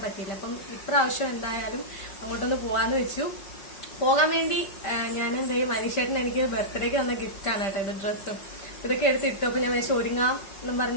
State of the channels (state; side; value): late; right; 5.1 ms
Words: പറ്റിയില്ല. അപ്പം ഇപ്രാവശ്യം എന്തായാലും അങ്ങോട്ടൊന്ന് പോവാന്ന് വെച്ചു. പോകാൻ വേണ്ടി ഞാൻ മനീഷേട്ടൻ എനിക്ക് ബർത്ത്ഡേക്ക് തന്ന ഗിഫ്റ്റാണ് കേട്ടോ ഇത്. ഡ്രസ്സും ഇതൊക്കെ എടുത്തിട്ടു. അപ്പൊ ഞാൻ വിചാരിച്ചു ഒരുങ്ങാന്നും